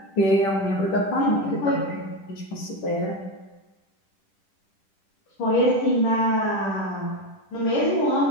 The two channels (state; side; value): late; right; 10 ms